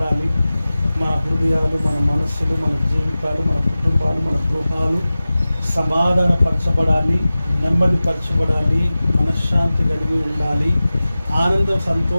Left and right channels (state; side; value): inverted; both; correlation -0.96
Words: మన హృదయాలు, మన మనస్సులు, మన జీవితాలు, మన కుటుంబాలు, మన గృహాలు సమాధానపరచబడాలి, నెమ్మదిపరచబడాలి, మనశ్శాంతి కలిగి ఉండాలి, ఆనందం